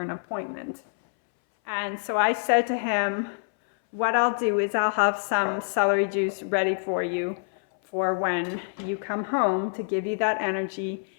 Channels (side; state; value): right; silent; 61 dB below the other